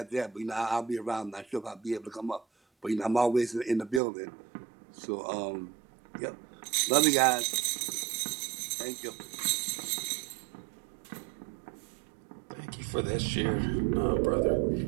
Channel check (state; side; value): drops out; left; at 4.0 s